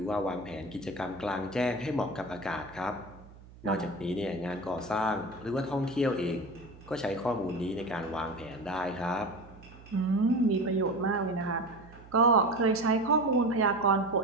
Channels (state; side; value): noise; right; hum, 20 dB below the sound